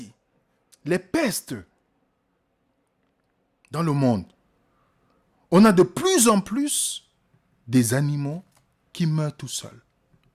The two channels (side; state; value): both; identical; correlation 1.00